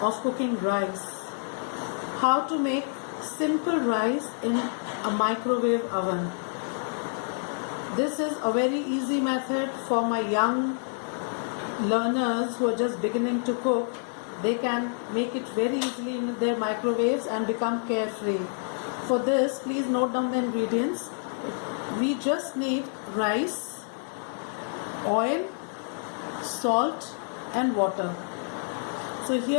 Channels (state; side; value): silent; right; 59 dB below the other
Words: of cooking rice. How to make simple rice in a microwave oven. This is a very easy method for my young learners who are just beginning to cook. They can make it very easily in their microwaves and become carefree. For this, please note down the ingredients. We just need rice, oil, salt and water. So